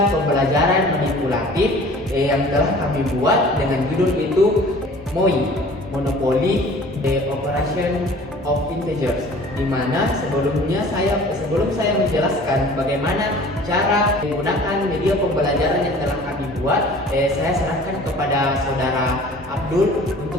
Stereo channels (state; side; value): normal; both; correlation 0.47